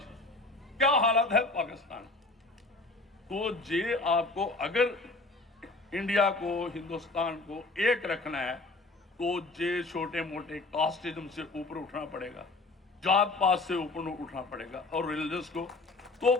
की, क्या हालत है पाकिस्तान। तो ये आपको अगर इंडिया को, हिंदुस्तान को एक रखना है तो ये छोटे मोटे कास्टिज्म से ऊपर उठना पड़ेगा, जात पात से ऊपर उठना पड़ेगा, और रिलीजियस को। तो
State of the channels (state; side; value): quieter; right; 3.2 dB